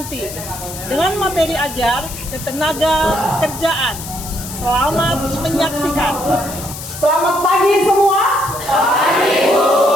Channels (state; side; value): noise; left; hiss, 11 dB below the sound